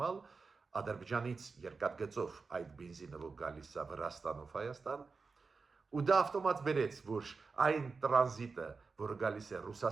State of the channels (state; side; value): quieter; left; 4.5 dB